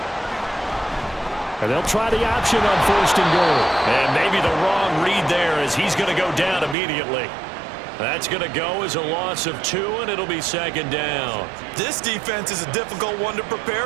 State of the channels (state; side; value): drops out; left; at 6.8 s